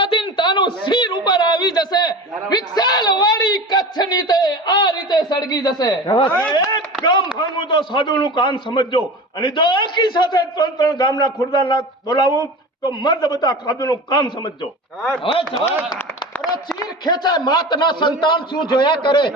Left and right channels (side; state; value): both; normal; correlation 0.32